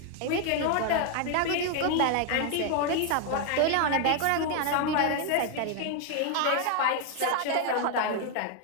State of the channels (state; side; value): different; both; correlation 0.00